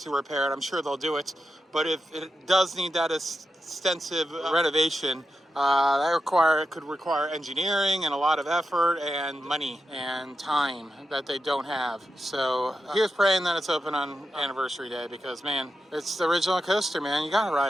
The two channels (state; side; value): normal; both; correlation 0.88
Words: repair it, I'm sure they'll do it. But if it does need that extensive renovation, that could require engineering and a lot of effort and money and time that they don't have. So here's praying that it's open on anniversary day, because man, it's the original coaster, man. You gotta